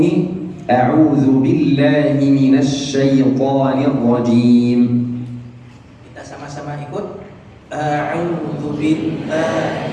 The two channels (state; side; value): identical; both; correlation 1.00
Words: أعوذ بالله من الشيطان الرجيم. Kita sama-sama ikut. A'udzu